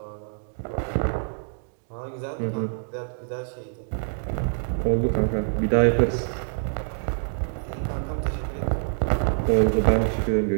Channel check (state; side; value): silent; left; digital silence